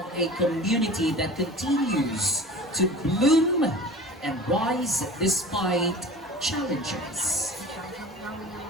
a community that continues to bloom and rise despite challenges?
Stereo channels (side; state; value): both; normal; correlation 0.39